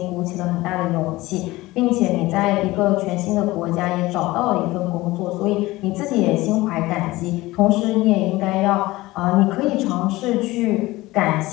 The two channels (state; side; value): quieter; right; 19.2 dB